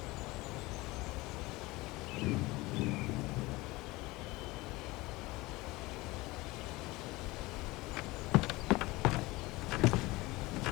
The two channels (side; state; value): right; quieter; 21.2 dB